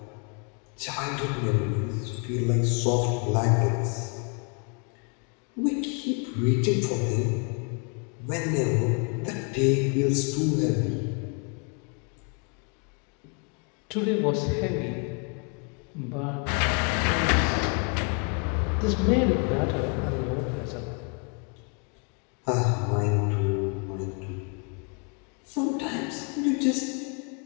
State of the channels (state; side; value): quieter; right; 37.0 dB